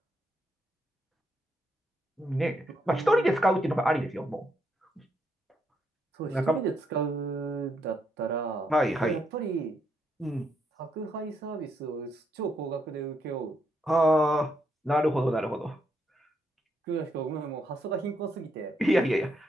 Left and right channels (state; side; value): normal; both; correlation 0.78